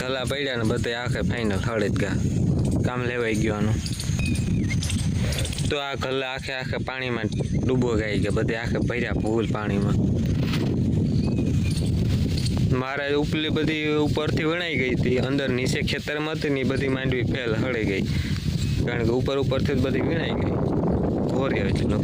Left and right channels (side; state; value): both; identical; correlation 1.00